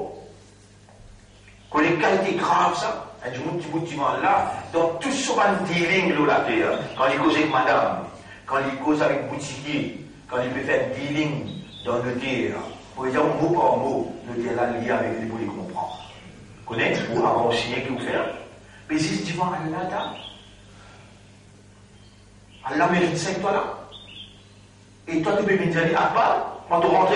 Quand les qualités graves, ça, un petit bout de là, dans tout ce dealing là, la terre, quand il cause avec madame, quand il cause avec boutiquier, quand il peut faire dealing dans le terre, pour dire mot par mot, le terre là lié avec lui pour les comprendre. Vous connaissez, ou avant signer qui vous fait, mais c'est devant Allah, Allah mérite 5 toi là. Et toi, tu peux me dire, Akbar, quand tu rentres,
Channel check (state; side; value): identical; both; correlation 1.00